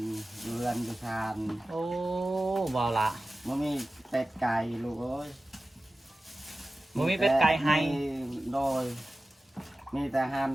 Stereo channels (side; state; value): both; normal; correlation 0.95